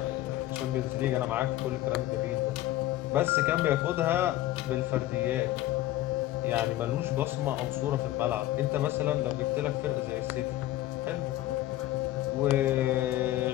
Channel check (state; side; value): quieter; right; 14.8 dB